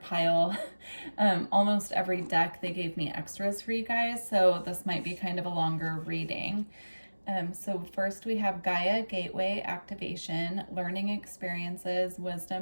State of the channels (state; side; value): inverted; both; correlation -1.00